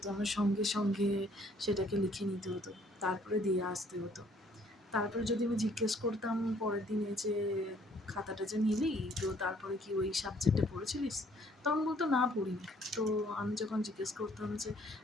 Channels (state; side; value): normal; both; correlation 0.61